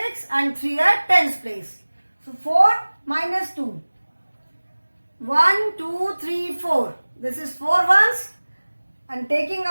and 3 at tens place. So 4 minus 2. 1, 2, 3, 4. This is 4 ones and taking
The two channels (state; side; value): inverted; both; correlation -1.00